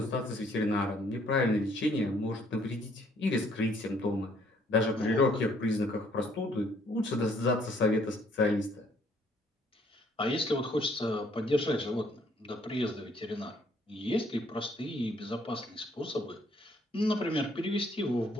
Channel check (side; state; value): both; normal; correlation 0.64